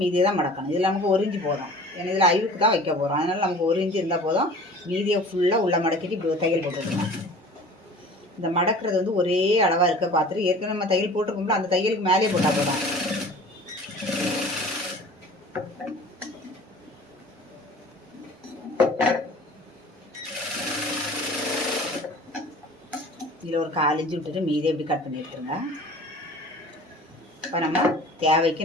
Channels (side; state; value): both; normal; correlation 0.44